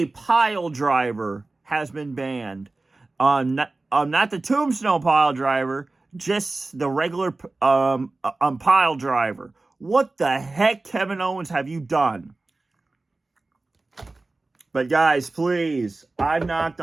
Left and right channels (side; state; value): left; quieter; 3.3 dB